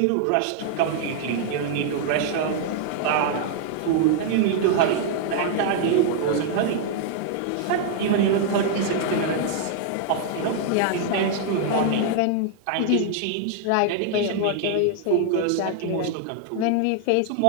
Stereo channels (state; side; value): different; both; correlation 0.00